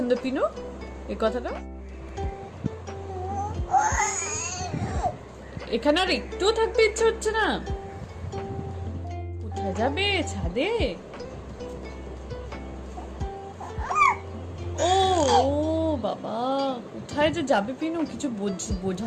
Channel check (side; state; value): both; identical; correlation 1.00